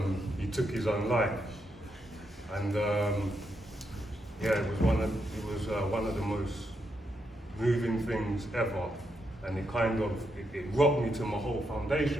he took his own life, and yeah, it was one of the most moving things ever, and it kind of it rocked me to my whole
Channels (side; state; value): both; normal; correlation 0.81